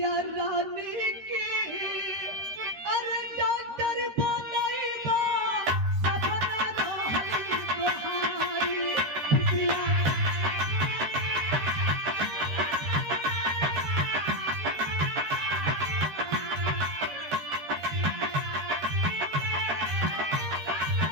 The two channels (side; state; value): left; late; 13 ms